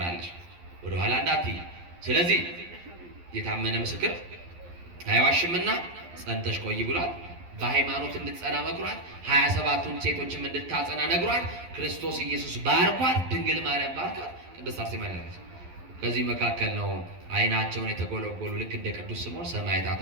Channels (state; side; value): late; left; 11 ms